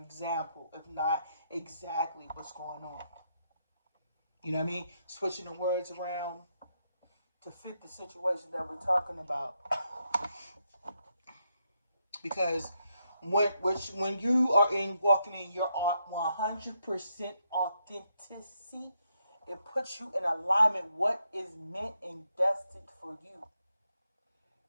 example, if not exactly what's going on. You know what I mean? Switching the words around to fit the situation that we're talking about. Because when you are walking in your 100% authenticity, it puts you in alignment with what is meant and destined for you.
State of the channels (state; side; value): inverted; both; correlation -0.79